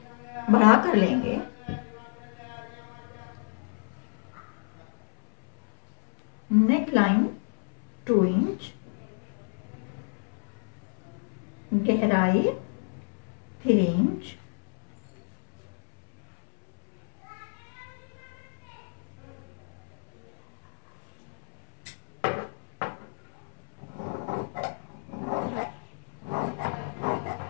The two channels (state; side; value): silent; right; 58 dB below the other